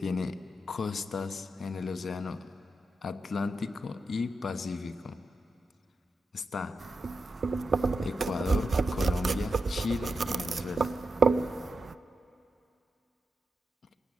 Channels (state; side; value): normal; both; correlation 0.88